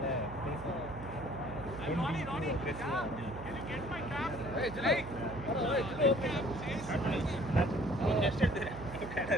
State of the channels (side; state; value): right; noise; hum, 12 dB below the sound